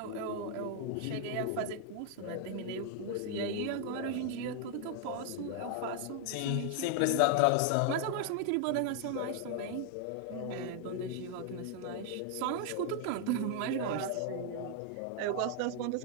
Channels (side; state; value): both; different; correlation 0.00